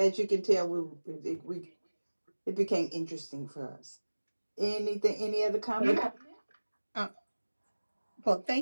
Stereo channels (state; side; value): inverted; both; correlation -1.00